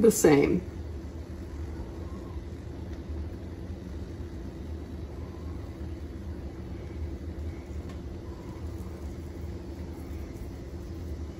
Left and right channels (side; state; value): both; identical; correlation 1.00